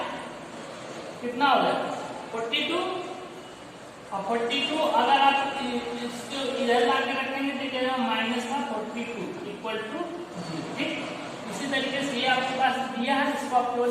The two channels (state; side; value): identical; both; correlation 1.00